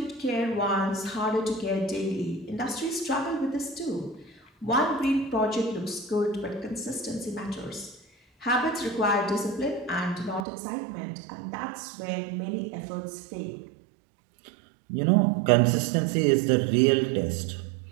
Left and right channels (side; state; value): left; drops out; at 10.5 s